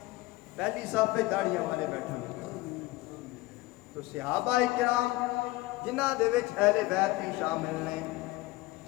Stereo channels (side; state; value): right; quieter; 19.7 dB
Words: پہلی صف پہ داڑیاں والے بیٹھیں، تو صحابہ کرام جنہاں دے وچ اہل بیت بھی شامل نے،